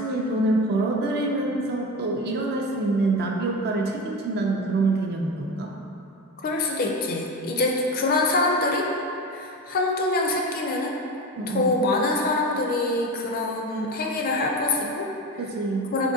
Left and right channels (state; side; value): normal; both; correlation 0.24